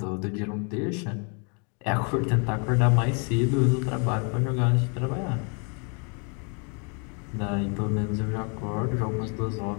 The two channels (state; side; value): quieter; right; 37.2 dB